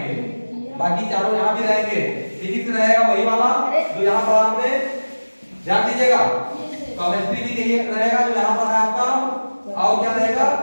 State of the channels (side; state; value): both; inverted; correlation -1.00